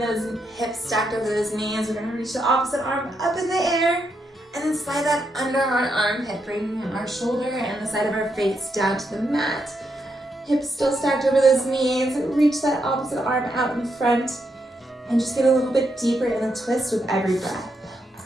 hips stacked over those knees, we're gonna reach the opposite arm up in the air and then slide that under our armpit, bringing our shoulder and the side of our face down to the mat. Hips still stacked over those knees. Reach that opposite arm out in front and just get a little bit deeper in the twist with every breath.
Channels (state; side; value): normal; both; correlation 0.81